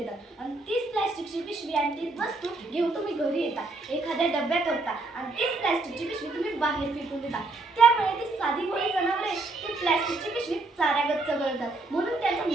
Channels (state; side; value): quieter; left; 3.2 dB